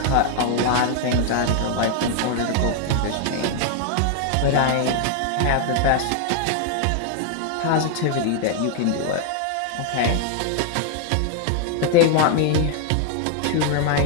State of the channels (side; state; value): both; different; correlation 0.00